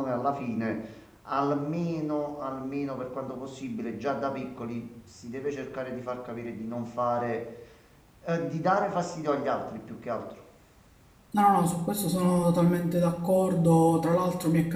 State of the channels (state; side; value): identical; both; correlation 1.00